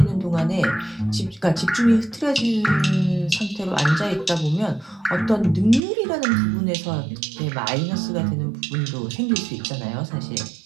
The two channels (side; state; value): left; drops out; at 5.8 s